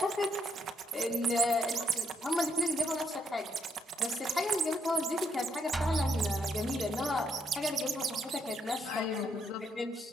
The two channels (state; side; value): normal; both; correlation 0.74